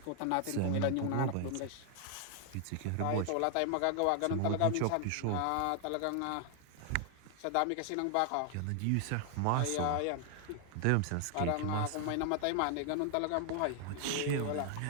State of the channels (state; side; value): different; both; correlation 0.00